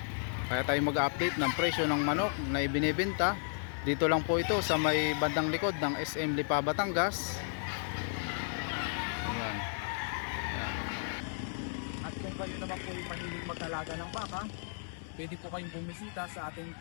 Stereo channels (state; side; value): silent; right; 55 dB below the other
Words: kaya tayo mag-update ng presyo ng manok na ibinebenta. Dito lang po ito sa may bandang likod ng SM Lipa, Batangas. Ayan. Ayan. At kung kayo naman po yung mahilig mag-alaga ng baka, pwede po kayong bumisita sa